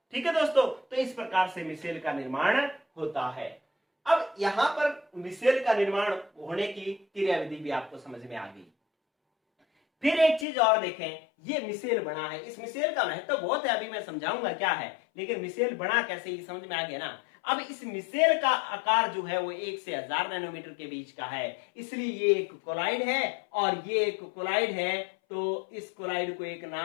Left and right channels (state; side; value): drops out; right; at 10.5 s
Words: ठीक है दोस्तों। तो इस प्रकार से मिसेल का निर्माण होता है। अब यहां पर मिसेल का निर्माण होने की क्रियाविधि भी आपको समझ में आ गई। फिर एक चीज और देखें, ये मिसेल बना है, इस मिसेल का महत्व बहुत है, अभी मैं समझाऊंगा क्या है, लेकिन मिसेल बना कैसे ये समझ में आ गया ना। अब इस मिसेल का आकार जो है वो 1 से 1000 नैनोमीटर के बीच का है, इसलिए ये एक कोलाइड है और ये एक कोलाइड है। तो इस कोलाइड को एक